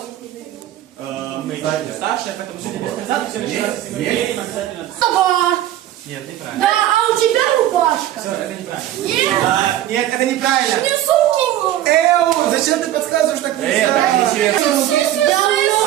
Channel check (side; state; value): left; quieter; 12.9 dB